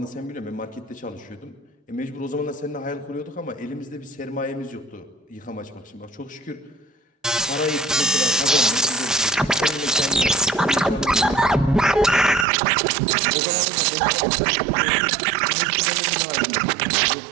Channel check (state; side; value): drops out; left; at 12.5 s